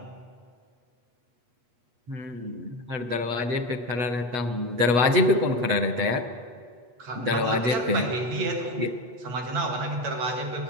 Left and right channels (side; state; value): left; late; 8.3 ms